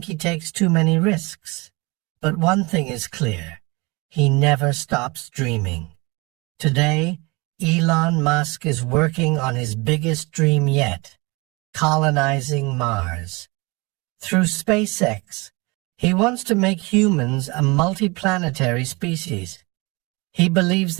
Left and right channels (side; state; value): left; quieter; 26.1 dB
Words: he takes too many risks. But one thing is clear. He never stops dreaming. Today, Elon Musk is working on his biggest dream yet, colonizing Mars. Through SpaceX, he wants to make humans a multiplanetary species. He believes